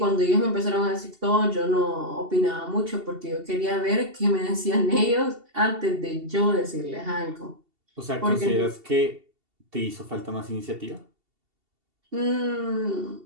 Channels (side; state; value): left; late; 2.7 ms